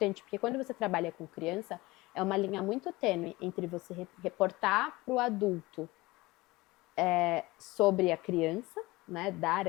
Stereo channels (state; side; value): quieter; right; 21.0 dB